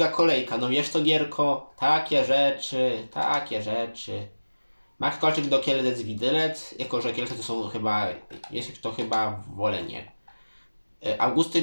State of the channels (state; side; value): inverted; both; correlation -1.00